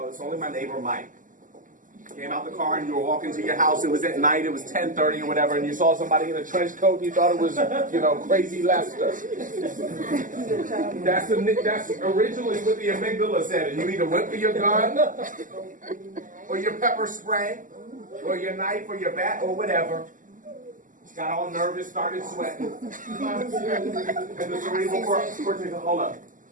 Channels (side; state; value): left; late; 0.38 ms